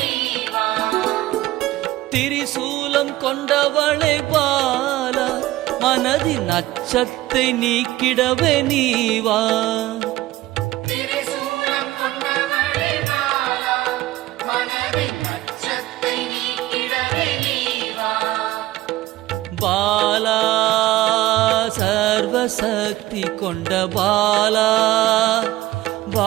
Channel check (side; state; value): left; quieter; 16.6 dB